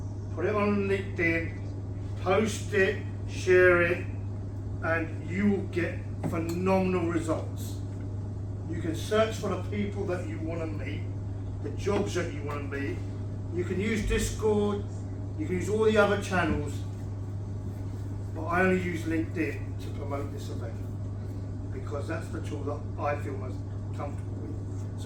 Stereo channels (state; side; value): identical; both; correlation 1.00